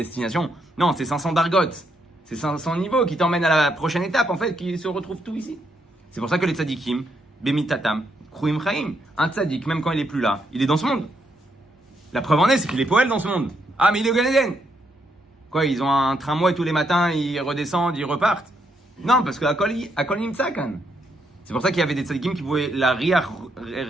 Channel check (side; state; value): both; normal; correlation 0.77